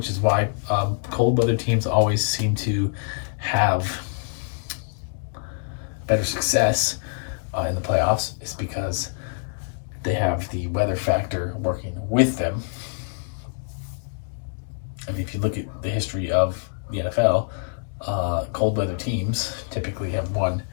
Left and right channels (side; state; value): right; silent; digital silence